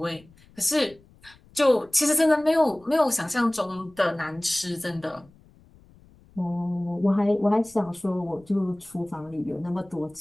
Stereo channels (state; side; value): noise; left; rumble, 27 dB below the sound